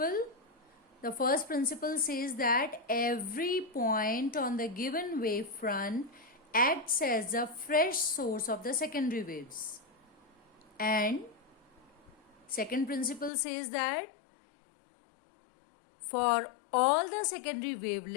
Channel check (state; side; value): drops out; right; at 13.3 s